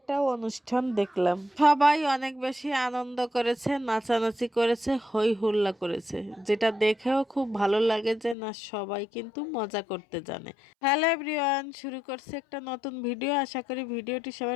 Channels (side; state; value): right; drops out; at 8.3 s